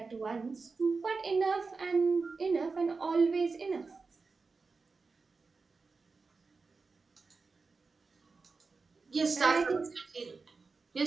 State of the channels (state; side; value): quieter; left; 4.3 dB